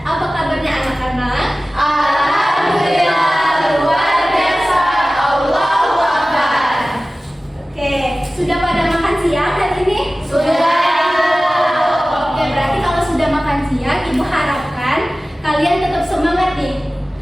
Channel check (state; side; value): normal; both; correlation 0.97